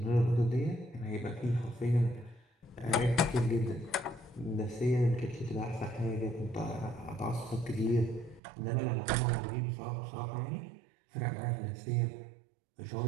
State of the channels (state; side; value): drops out; left; at 8.4 s